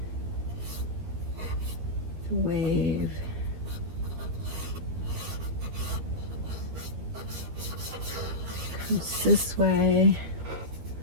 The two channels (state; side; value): late; left; 13 ms